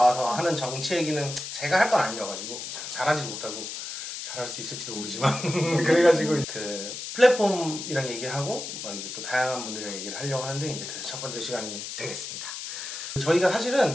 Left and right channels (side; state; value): left; noise; hiss, 7 dB below the sound